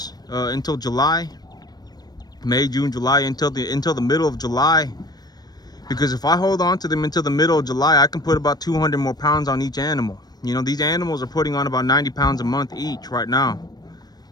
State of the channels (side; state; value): right; late; 0.19 ms